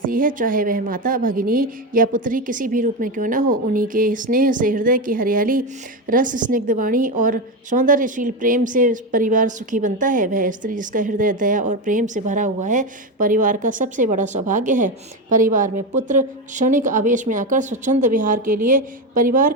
है, चाहे वह माता, भगिनी या पुत्री किसी भी रूप में क्यों न हो। उन्हीं के स्नेह से हृदय की हरियाली, रस स्निग्ध वाणी और सौंदर्यशील प्रेम से परिवार सुखी बनता है। वह स्त्री जिसका हृदय दया और प्रेम से भरा हुआ है परिवार का सबसे बड़ा सौभाग्य है। परिवार में पुत्र क्षणिक आवेश में आकर स्वच्छंद विहार के लिए परिवार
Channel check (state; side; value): normal; both; correlation 0.14